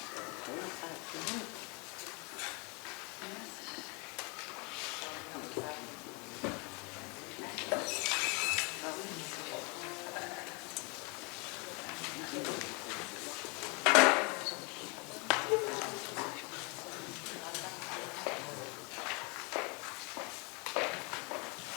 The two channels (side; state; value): right; quieter; 31.3 dB